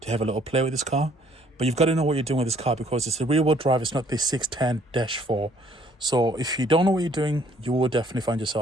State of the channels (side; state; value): both; normal; correlation 0.62